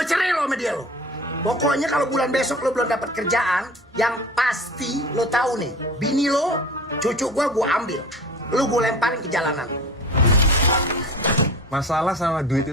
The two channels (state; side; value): normal; both; correlation 0.39